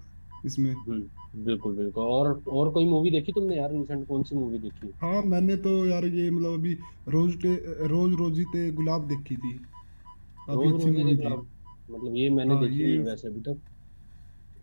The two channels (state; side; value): inverted; both; correlation -1.00